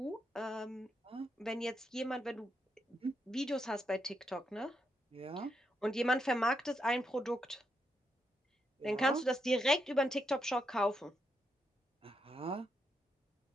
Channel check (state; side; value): normal; both; correlation 0.81